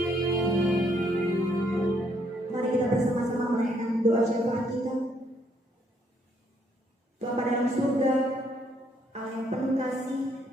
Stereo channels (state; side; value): normal; both; correlation 0.70